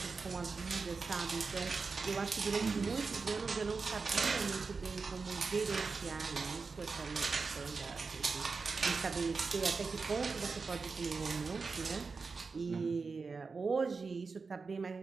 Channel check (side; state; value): left; quieter; 4.6 dB